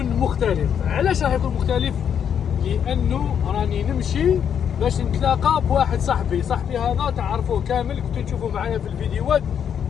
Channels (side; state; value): right; quieter; 8.3 dB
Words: مختلف. علاش راح يكون مختلف؟ لانه راني نمشي باش نتلاقى بواحد صاحبي هذا تعرفوه كامل، كنتو تشوفوا معايا في الفيديوهات،